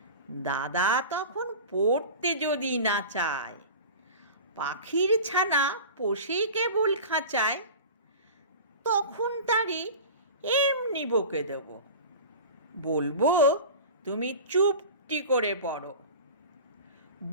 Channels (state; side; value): inverted; both; correlation -0.35